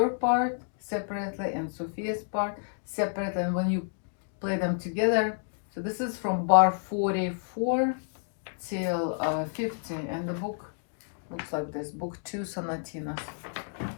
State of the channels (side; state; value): right; silent; digital silence